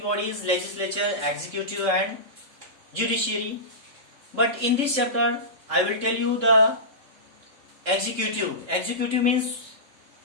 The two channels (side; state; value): left; late; 3.7 ms